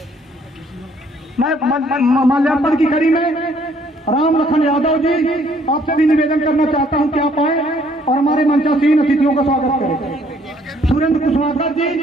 मैं माल्यार्पण की कड़ी में राम लखन यादव जी आपसे भी निवेदन करना चाहता हूं कि आप आए और हमारे मंचासीन अतिथियों का स्वागत करें। सुरेंद्र कुशवाहा जी,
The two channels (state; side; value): normal; both; correlation 0.63